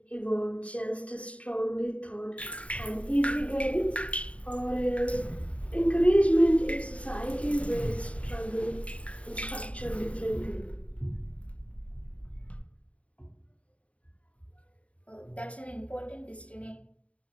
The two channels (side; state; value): right; late; 0.065 ms